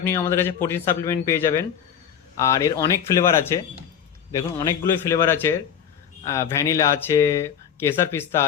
আমাদের কাছে প্রোটিন সাপ্লিমেন্ট পেয়ে যাবেন। আর এর অনেক ফ্লেভার আছে, দেখুন অনেকগুলোই ফ্লেভার আছে। ভ্যানিলা আছে, কেসার পিস্তা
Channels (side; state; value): right; quieter; 8.5 dB